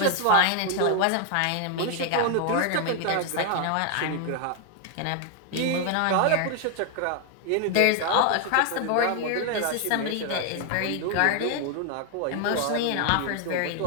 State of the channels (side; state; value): both; different; correlation 0.00